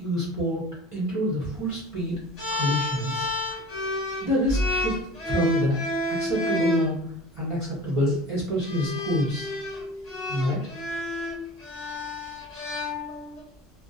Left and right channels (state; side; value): normal; both; correlation 0.39